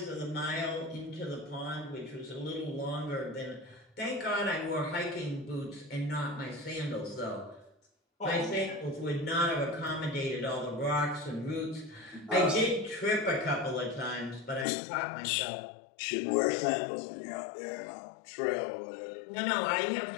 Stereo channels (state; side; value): drops out; right; at 14.7 s